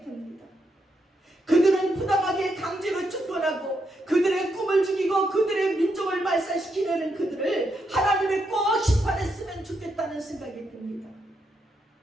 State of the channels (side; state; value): both; normal; correlation 0.81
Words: 듭니다. 그들은 부당하게 강제로 쫓겨나고 그들의 꿈을 죽이고 그들의 민족을 말살시키려는 그들을 하나님이 꼭 심판했으면 좋겠다는 생각이 듭니다.